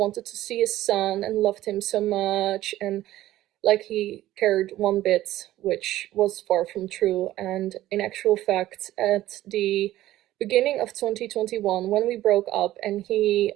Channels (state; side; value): quieter; left; 14.8 dB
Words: to see his son and loved him so much, and like he cared one bit, which was far from true. And in actual fact, at the beginning of 2021, when we broke up and he